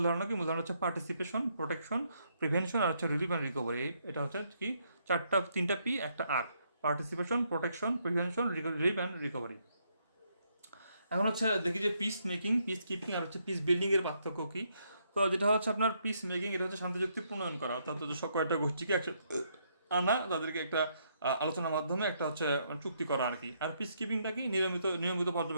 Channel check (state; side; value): inverted; both; correlation -0.74